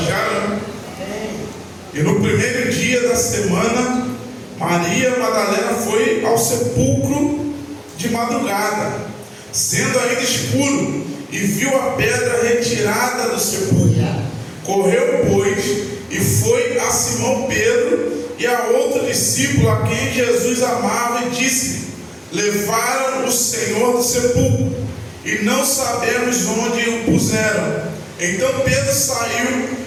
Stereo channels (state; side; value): identical; both; correlation 1.00